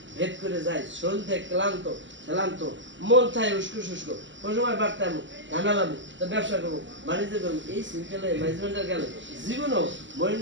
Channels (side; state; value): left; late; 0.54 ms